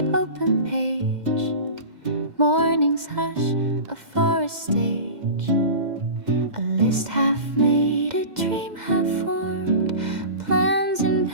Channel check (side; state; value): left; late; 2.1 ms